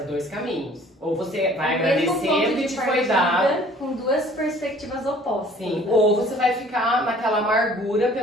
dois caminhos. Ou você vai agradecer o que te foi dado, com duas perspectivas opostas. sim. Né? Ou você vai ficar naquela amargura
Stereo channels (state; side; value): normal; both; correlation 0.53